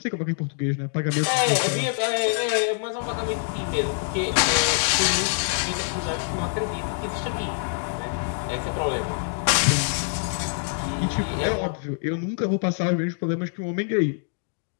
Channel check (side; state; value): right; silent; digital silence